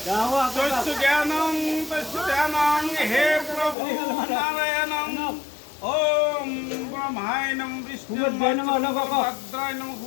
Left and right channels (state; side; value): drops out; right; at 3.8 s